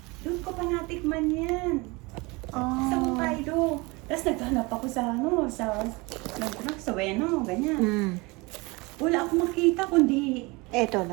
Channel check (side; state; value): left; quieter; 25.4 dB